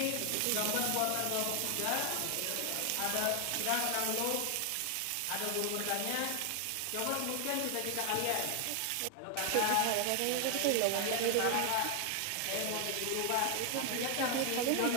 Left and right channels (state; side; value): different; both; correlation 0.00